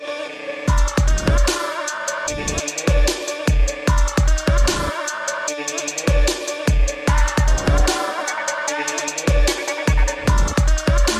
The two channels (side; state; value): both; identical; correlation 1.00